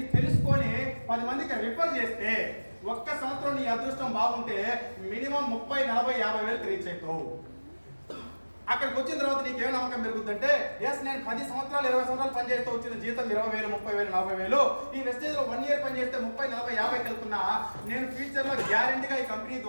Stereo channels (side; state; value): both; inverted; correlation -1.00